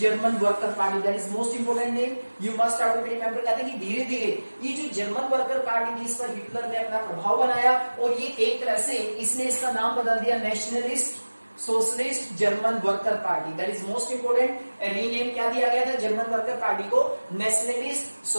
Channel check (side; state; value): both; inverted; correlation -1.00